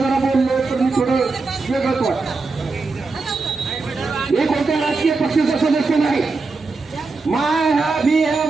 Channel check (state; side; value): quieter; left; 4.0 dB